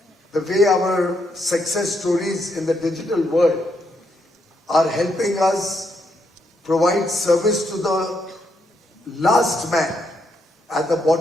the way our success stories in the digital world are helping us provide service to the last man at the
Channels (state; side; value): normal; both; correlation 0.77